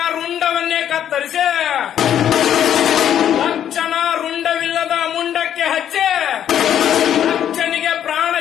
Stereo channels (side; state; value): right; quieter; 10.1 dB